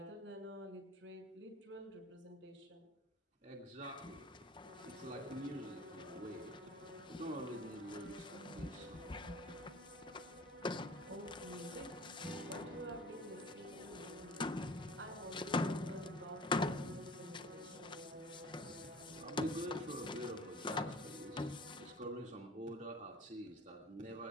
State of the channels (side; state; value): both; normal; correlation 0.44